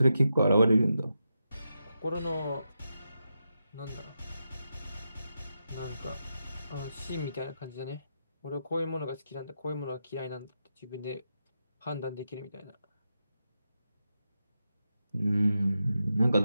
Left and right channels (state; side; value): inverted; both; correlation -0.87